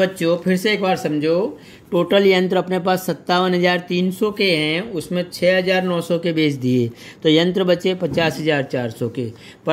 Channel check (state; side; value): identical; both; correlation 1.00